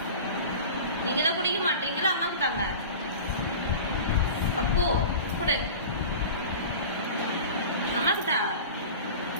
நீங்க தான் குடிக்க மாட்டீங்களா? அம்மாக்கு தாங்க. அப்போ கொடு, அம்மாக்கு தா.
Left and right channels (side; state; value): both; inverted; correlation -0.35